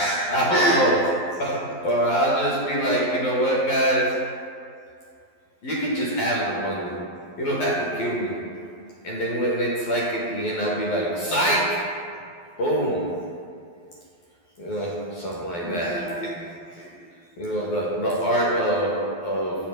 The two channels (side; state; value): right; late; 12 ms